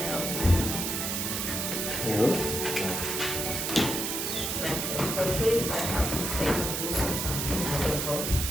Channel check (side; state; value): right; noise; hiss, 1 dB below the sound